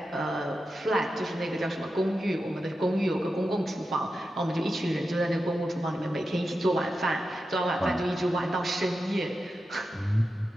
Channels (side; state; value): both; normal; correlation 0.90